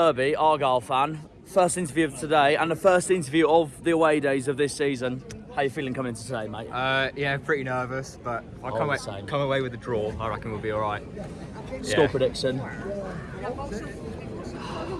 Argyle fan, first interview of today and the first interview of the away days of this season. How you feeling coming into today, mate? Yeah, pretty nervous, but if I come away with a draw, I reckon we'll be all right. Score prediction? I'd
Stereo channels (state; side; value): identical; both; correlation 1.00